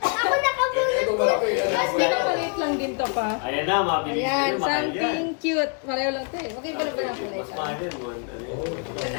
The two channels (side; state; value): right; quieter; 38.6 dB